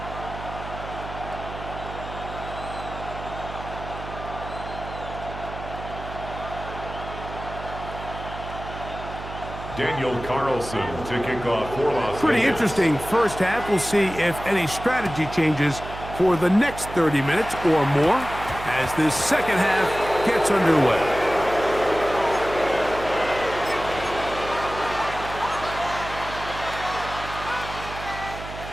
Daniel Carlson to kick off for Las Pretty Vegas. interesting first half. We'll see if any strategy changes for the next 30 minutes or more as this second half gets underway.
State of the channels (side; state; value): right; noise; hum, 11 dB below the sound